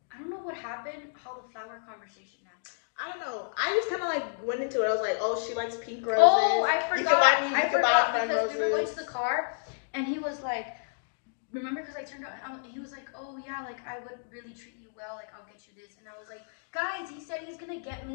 I don't know what happened, how the flower conversation happened. I don't know. I just kind of like went into it. I was like, oh, she likes pink roses. Oh, I forgot. I forgot because we were going to the car, and he was like, remember, because I turned around, he was like, oh yeah, like I would really treat you well, like I'll get you this. And I was like, guys, he said he's gonna get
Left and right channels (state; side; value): silent; right; digital silence